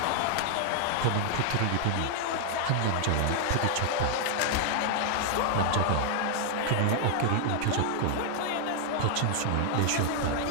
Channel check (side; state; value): both; different; correlation 0.00